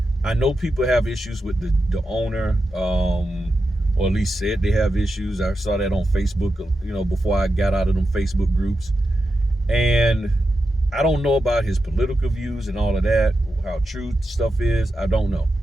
I know people have issues with the owner, or at least said they have issues. I saw that on Facebook, before I got out of them Facebook groups. And I don't know about his political views and all of that, how true stuff is. I don't know.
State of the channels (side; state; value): both; normal; correlation 0.89